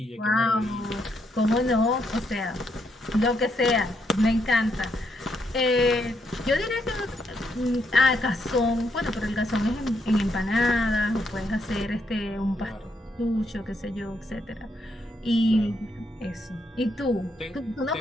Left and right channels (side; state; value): both; normal; correlation 0.77